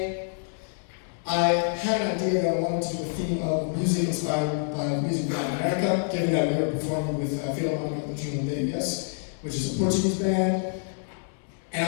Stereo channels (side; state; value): right; silent; 60 dB below the other